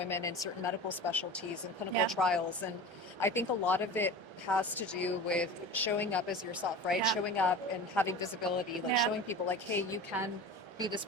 in certain medical specialties and clinical yeah, trials. And I think a lot of it has to do with showing up as yourself, right? yeah, Showing up and having visibility, like yeah, showing people like, hey, you can be this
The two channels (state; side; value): late; left; 1.3 ms